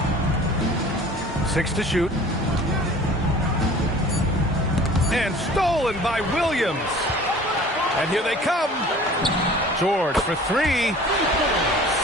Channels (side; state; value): both; normal; correlation 0.46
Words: 6 to shoot. And stolen by Williams. And here they come. George for 3.